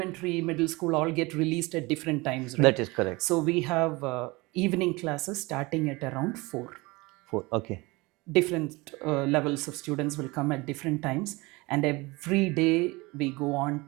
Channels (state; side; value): quieter; left; 23.8 dB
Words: middle school, all get released at different times, right? That is correct. So we have evening classes starting at around 4. 4. Okay. Different levels of students will come at different times, and every day we go on